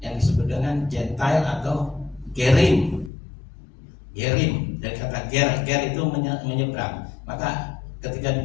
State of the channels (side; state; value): right; drops out; at 3.1 s